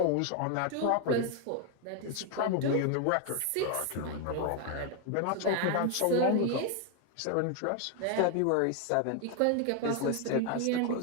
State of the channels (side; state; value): both; different; correlation 0.01